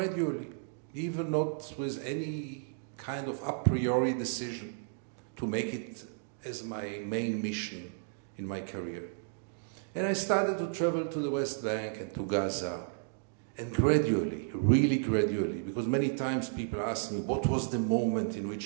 even not with any kind of a priori decision to make it as my main mission in my career. And I started to travel to the West Bank and to Gaza, and gradually, really gradually, because many times people ask me, what was the moment in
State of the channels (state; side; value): silent; left; digital silence